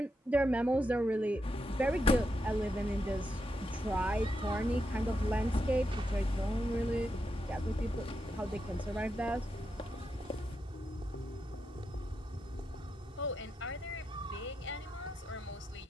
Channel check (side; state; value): both; normal; correlation 0.85